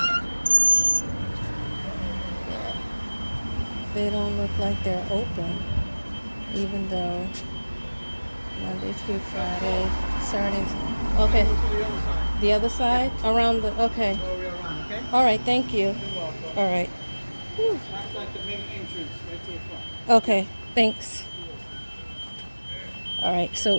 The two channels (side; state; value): both; inverted; correlation -1.00